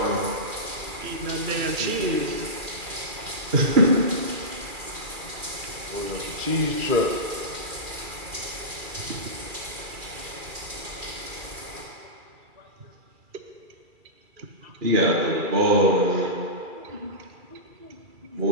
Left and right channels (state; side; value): late; left; 2.4 ms